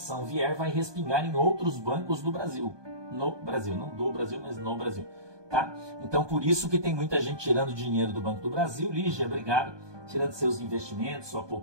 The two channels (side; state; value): left; late; 1.2 ms